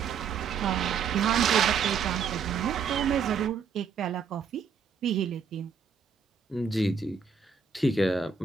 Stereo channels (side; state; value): left; quieter; 6.3 dB